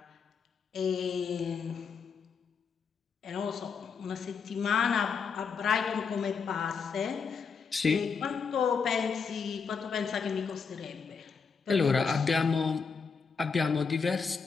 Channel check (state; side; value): quieter; right; 5.6 dB